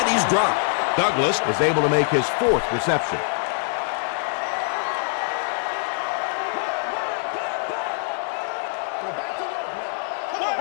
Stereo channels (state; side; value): silent; right; digital silence